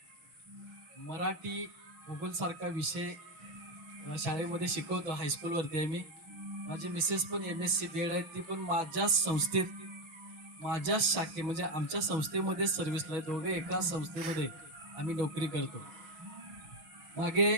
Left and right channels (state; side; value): late; left; 6.3 ms